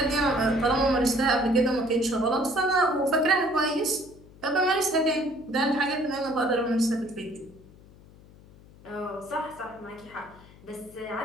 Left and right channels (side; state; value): left; noise; hum, 23 dB below the sound